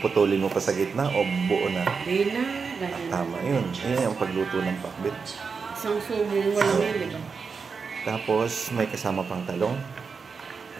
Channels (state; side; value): quieter; left; 5.3 dB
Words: mo pa sa gitna o buo na? Hindi na. Tama yun. Yan yung pagluto ng pakbet. Isang subong mo lang yun, di ba? Tapos, may kasama pang talong.